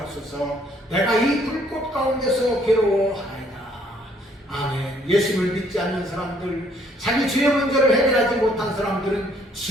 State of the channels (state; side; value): normal; both; correlation 0.64